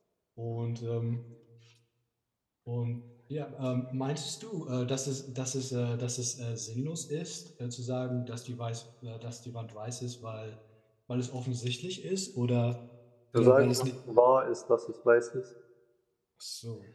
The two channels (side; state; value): both; identical; correlation 1.00